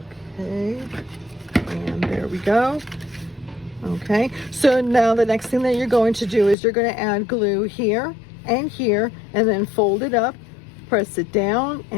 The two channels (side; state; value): right; drops out; at 6.6 s